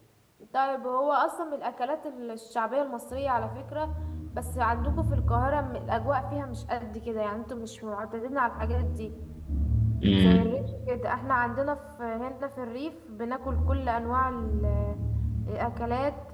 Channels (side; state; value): both; identical; correlation 1.00